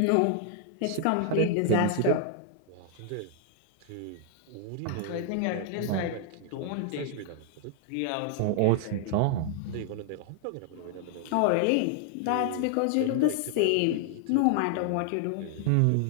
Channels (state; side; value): different; both; correlation 0.00